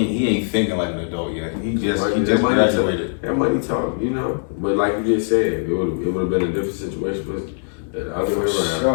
thinking like an adult yet. He just graduated. That money talk, you know. But like you just said, it would have been a different situation, but the other way around.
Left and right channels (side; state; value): right; silent; digital silence